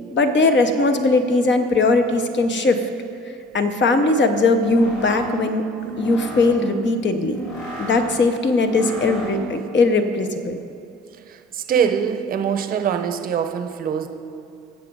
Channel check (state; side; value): normal; both; correlation 0.47